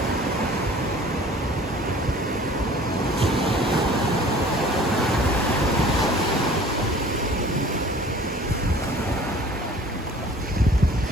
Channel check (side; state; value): both; normal; correlation 0.48